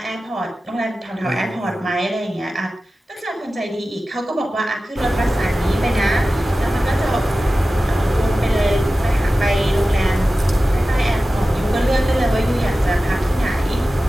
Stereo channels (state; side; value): normal; both; correlation 0.95